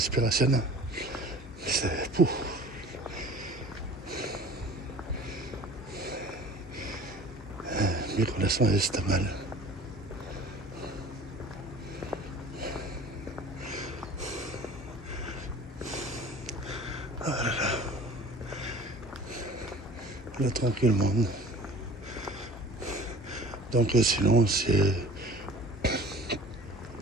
C'est pouf. Micro-leçon c'est mal. Ah là là. Là, tranquillement. Donc sinon, c'est...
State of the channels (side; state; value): both; normal; correlation 0.45